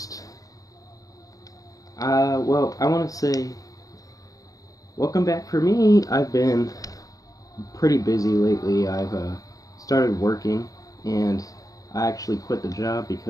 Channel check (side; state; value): right; late; 0.17 ms